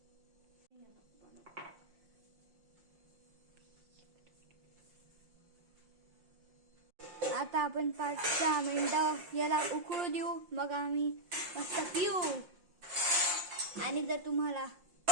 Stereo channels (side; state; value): left; late; 5.6 ms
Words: आता आपण 5-6 मिनिटं याला उकळू देऊ. मग आम्ही मस्त पिऊ. आणि जर तुम्हाला